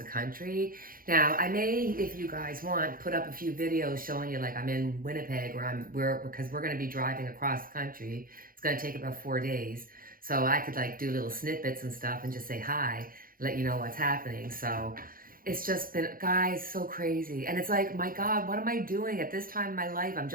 country. Now, I may, if you guys want, put up a few videos showing you, like, I'm in Winnipeg, because we're going to be driving across the country. It's going to take about 4 days. So I could like do little snippets and stuff and just say hi, let you know what's happening. So it's just been, guys, so crazy. And it's like, my God, what am I doing at this time in my life? I'm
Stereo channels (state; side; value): late; left; 0.41 ms